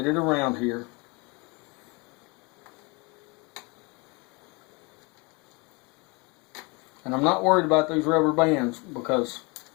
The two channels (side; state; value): right; quieter; 28.3 dB